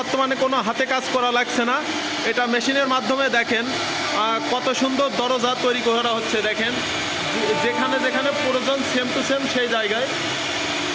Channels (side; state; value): both; identical; correlation 1.00